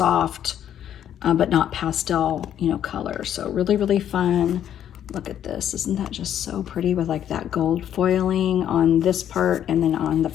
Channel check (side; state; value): right; quieter; 10.2 dB